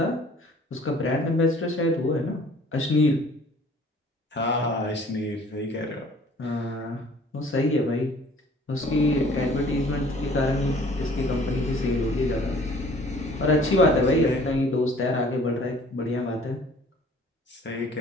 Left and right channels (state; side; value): normal; both; correlation 0.53